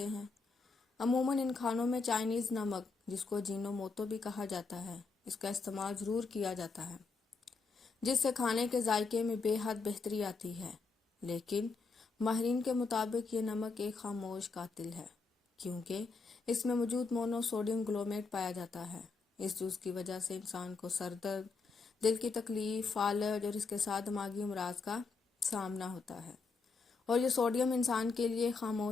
ہیں۔ عموماً ان کھانوں میں چائنیز نمک، جس کو جینو موتو بھی کہا جاتا ہے، اس کا استعمال ضرور کیا جاتا ہے، جس سے کھانے کے ذائقے میں بے حد بہتری آتی ہے۔ لیکن ماہرین کے مطابق یہ نمک ایک خاموش قاتل ہے، کیونکہ اس میں موجود مونو سوڈیم گلومیٹ پایا جاتا ہے۔ اس جز کی وجہ سے انسان کو سر درد، دل کی تکلیف، فالج اور اس کے ساتھ دماغی امراض کا سامنا ہوتا ہے۔ اور یہ سوڈیم انسان کے لیے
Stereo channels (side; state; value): right; quieter; 4.4 dB